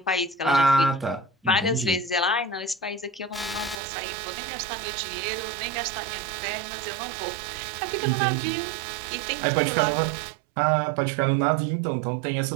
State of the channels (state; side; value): drops out; left; at 3.8 s